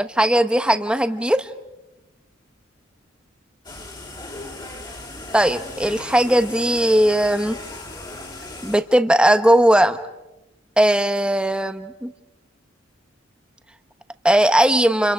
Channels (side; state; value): both; normal; correlation 0.88